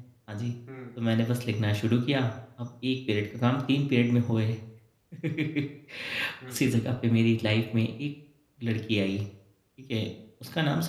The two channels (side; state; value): both; identical; correlation 1.00